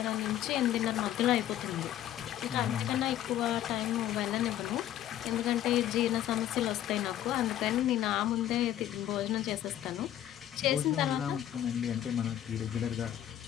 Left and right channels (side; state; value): right; quieter; 12.0 dB